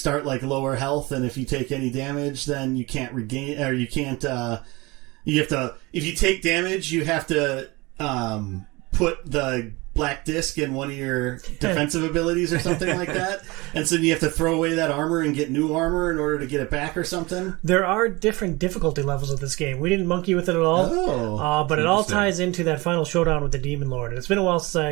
like lower health, and if you take any damage, then you can't regain, or you can't, you have to, if you take damage, you have to, put the black disc in one of your defensive abilities or something like that, and so you have to throw away that armor and get new armor in order to get it back or something. There are different difficulty levels of this game. We didn't monkey with it at all, but it all ties into that final showdown with the Demon Lord. And it's been a while since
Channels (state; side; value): quieter; left; 23.6 dB